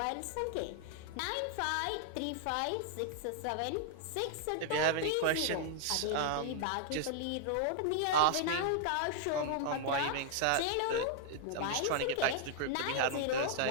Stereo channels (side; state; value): both; different; correlation -0.01